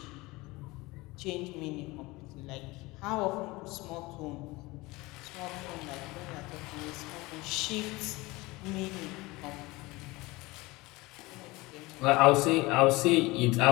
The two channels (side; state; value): right; quieter; 22.0 dB